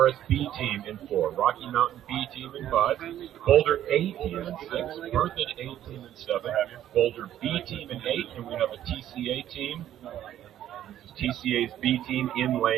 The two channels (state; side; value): quieter; left; 11.7 dB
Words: B team in 4, Rocky Mountain B team in 5, Boulder A team in 6, Berthoud A team in 7, Boulder B team in 8, and we have a TCA team. TCA's B team in